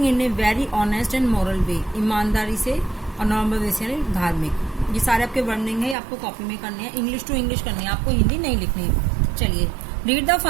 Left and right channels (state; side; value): drops out; left; at 6.0 s